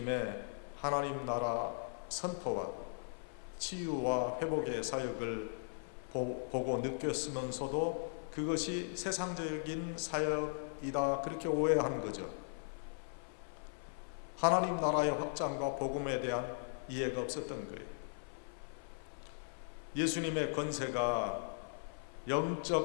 하나님 나라 선포와 치유와 회복의 사역을 보고 느꼈으면서도 그것이 세상적인 사역 것이다 그렇게 오해한 거죠. 하나님 나라의 확장과 복음에 대한 이해가 없었던 거예요. 예수님의 권세가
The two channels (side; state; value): right; silent; 52 dB below the other